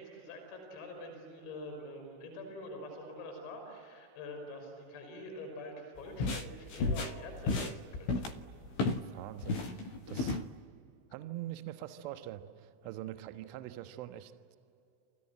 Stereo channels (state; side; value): late; right; 16 ms